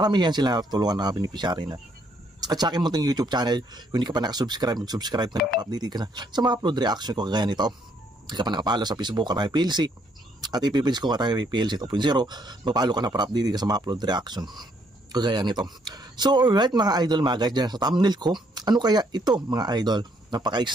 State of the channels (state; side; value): normal; both; correlation 0.70